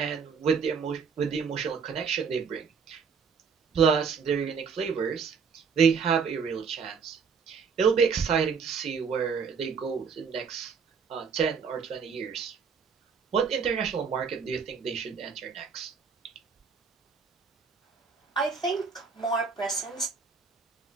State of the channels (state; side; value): quieter; left; 5.9 dB